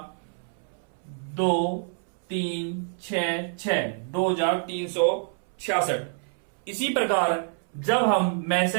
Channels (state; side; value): silent; left; 60 dB below the other